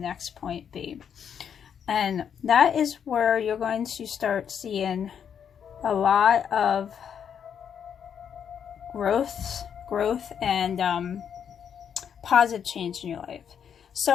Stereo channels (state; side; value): quieter; right; 8.0 dB